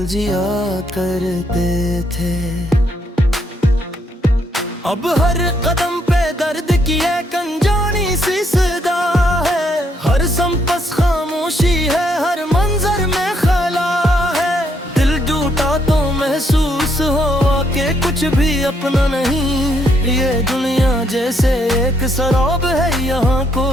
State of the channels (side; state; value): both; normal; correlation 0.73